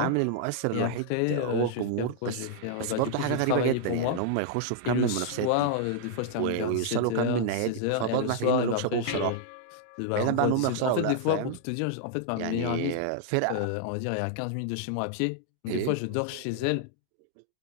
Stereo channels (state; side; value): different; both; correlation -0.01